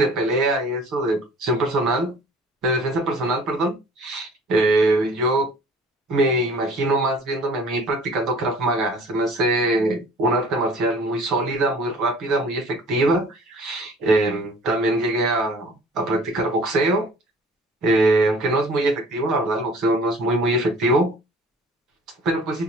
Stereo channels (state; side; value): normal; both; correlation 0.49